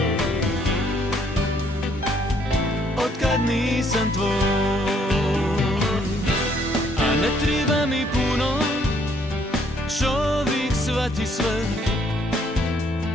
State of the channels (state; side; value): normal; both; correlation 0.66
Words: Otkad nisam tvoj, a ne treba mi puno, čovjek shvati sve,